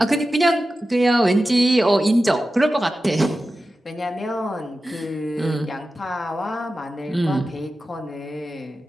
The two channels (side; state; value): both; normal; correlation 0.93